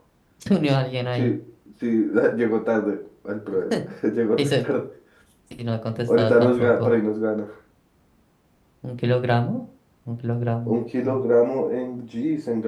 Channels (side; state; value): both; identical; correlation 1.00